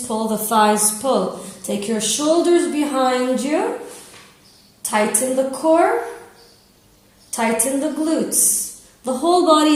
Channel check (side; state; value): both; identical; correlation 1.00